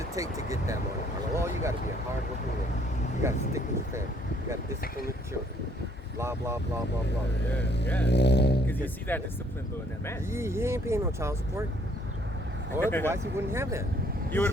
take to get that Monte Carlo? Well, you got to be a hard-working man. You got to stick with your family. You got to discipline your children. Blah, blah, blah, blah, blah. Yeah. Because you see that discipline though in that man. He ain't paying no child support. Or otherwise he wouldn't have that. You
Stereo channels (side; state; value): both; normal; correlation 0.63